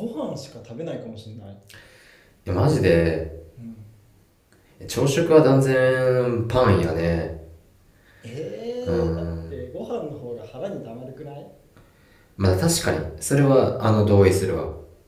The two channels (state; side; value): identical; both; correlation 1.00